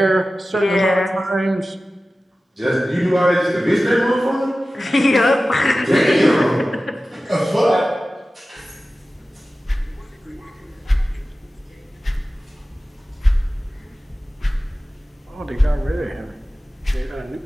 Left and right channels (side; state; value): both; normal; correlation 0.96